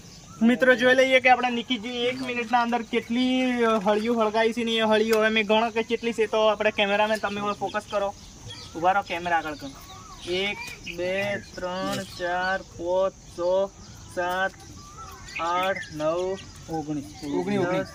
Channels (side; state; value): both; identical; correlation 1.00